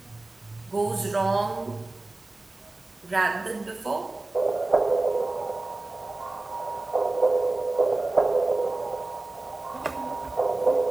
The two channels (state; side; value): quieter; left; 3.0 dB